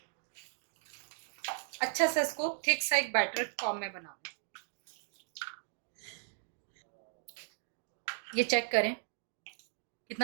अच्छा से इसको थिक सा एक बैटर फॉर्म में बनाना। ये चेक करें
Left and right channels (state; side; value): silent; left; digital silence